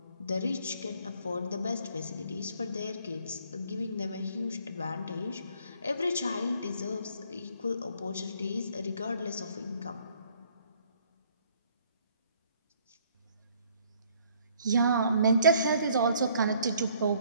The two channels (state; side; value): inverted; both; correlation -0.62